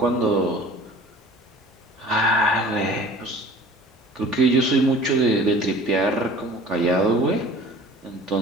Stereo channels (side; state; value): both; normal; correlation 0.45